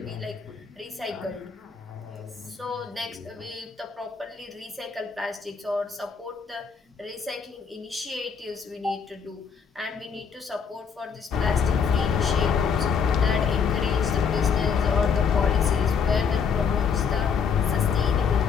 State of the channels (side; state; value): right; quieter; 6.2 dB